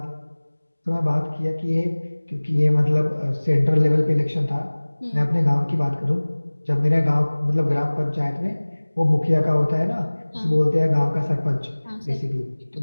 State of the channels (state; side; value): inverted; both; correlation -1.00